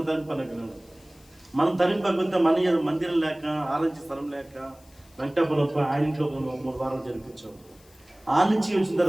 తరిగిపోయినాడు. మనం తరిగిపోతే మన మందిరం లేక, ఆలోచించే స్థలం లేక వెంకటాపురం ఆయన ఇంట్లో 3 వారాలు జరిపించాం. ఆ నుంచి వచ్చిన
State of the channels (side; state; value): left; noise; hiss, 28 dB below the sound